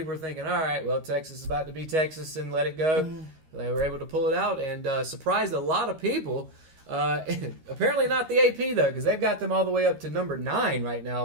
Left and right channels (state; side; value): late; left; 13 ms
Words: were thinking, all right, well, Texas is about to be Texas and let it go. Mm-hmm. They were able to pull it out and surprised a lot of people. Apparently not the AP, though, because they've got them all the way up to number 9 right